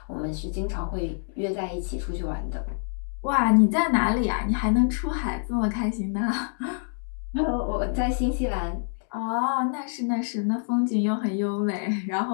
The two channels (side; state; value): right; silent; digital silence